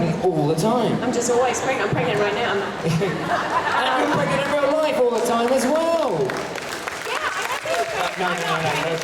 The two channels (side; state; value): both; identical; correlation 1.00